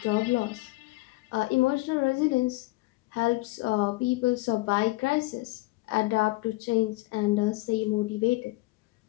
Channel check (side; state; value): right; quieter; 22.4 dB